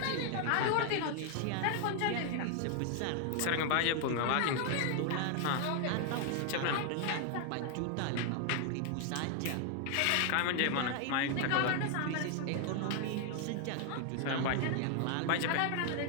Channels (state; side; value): different; both; correlation 0.00